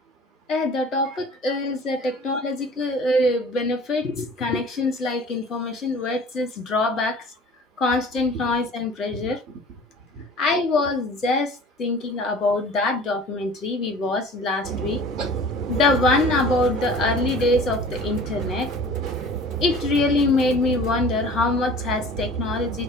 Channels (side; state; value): both; normal; correlation 0.45